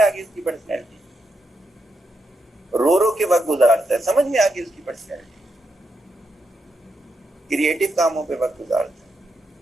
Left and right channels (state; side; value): normal; both; correlation 0.82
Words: गई उसकी पर्सनैलिटी। रो रो के वक्त गुजारता है, समझ में आ गई उसकी पर्सनैलिटी। क्रिएटिव कामों पे वक्त गुजारता है,